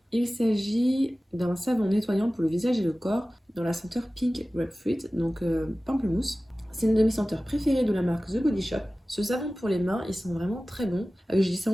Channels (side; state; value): both; normal; correlation 0.97